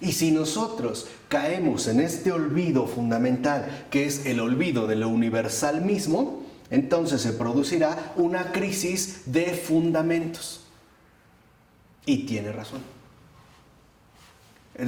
si nosotros caemos en este olvido fundamental, que es el olvido de lo universal mismo, entonces se producirá una crisis de fundamentos. Y tiene razón.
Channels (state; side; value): identical; both; correlation 1.00